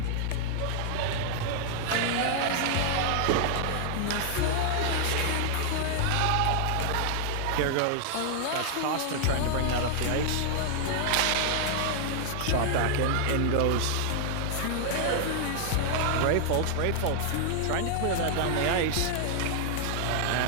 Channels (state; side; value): different; both; correlation 0.00